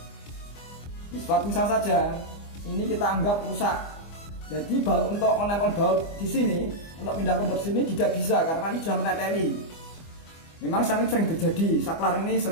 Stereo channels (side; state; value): right; late; 25 ms